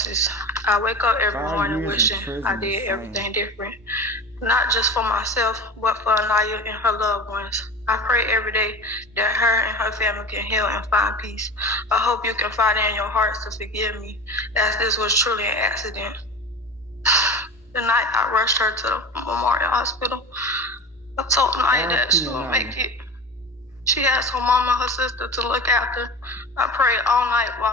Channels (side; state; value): both; normal; correlation 0.32